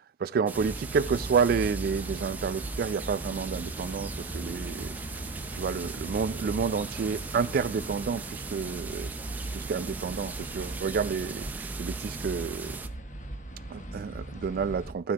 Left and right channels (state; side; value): quieter; left; 4.8 dB